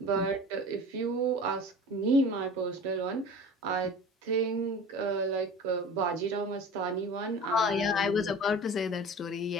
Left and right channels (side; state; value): both; normal; correlation 0.38